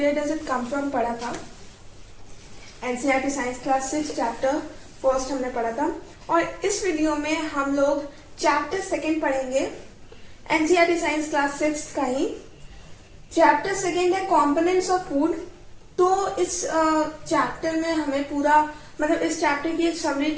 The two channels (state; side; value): identical; both; correlation 1.00